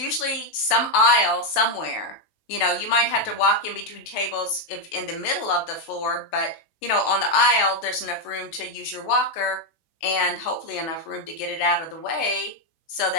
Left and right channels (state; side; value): late; right; 19 ms